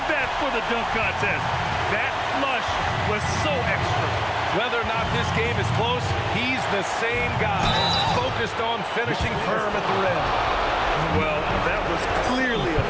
that for the dunk contest. That flush was so extra. Whether or not this game is close, he's the same guy, focused on finishing firm at the rim. Well, that was clearly a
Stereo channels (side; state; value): both; identical; correlation 1.00